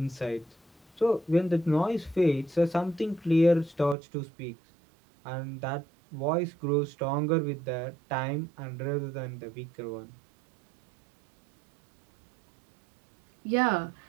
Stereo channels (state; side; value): drops out; left; at 4.0 s